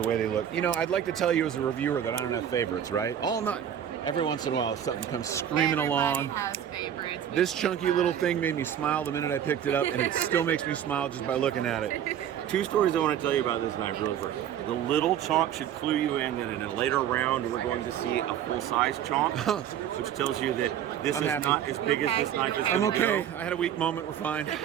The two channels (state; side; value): quieter; left; 9.8 dB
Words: way they look. You know, I'd like to tell you as a reviewer that I don't have favorites, right? Every once in a while, something comes screaming along. Has favorites. This chunky little thing made me smile the minute I picked it up, and it still makes me smile just by looking at it. 2 stories I want to tell you about this knife really quick. The little chonk should clue you in that in a later round we're going to see a full-size chonk, which tells you that this is not as big as this knife is. I'm okay. I had a weak moment. We're fine.